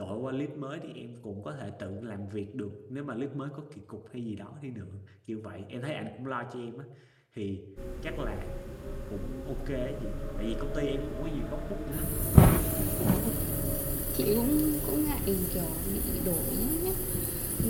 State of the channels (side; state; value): both; identical; correlation 1.00